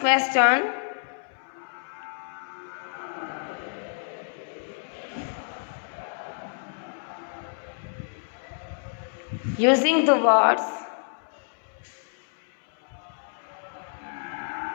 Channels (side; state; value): right; silent; 59 dB below the other